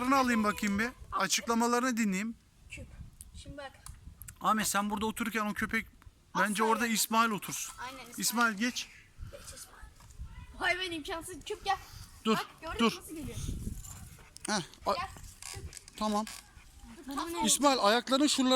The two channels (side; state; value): both; identical; correlation 1.00